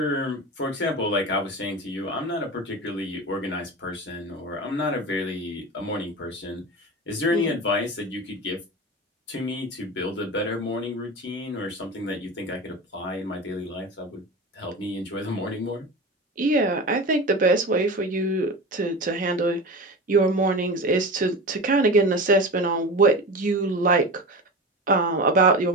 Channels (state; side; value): normal; both; correlation 0.28